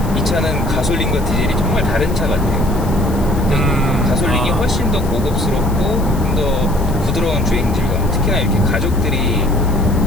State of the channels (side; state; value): left; noise; hiss, 18 dB below the sound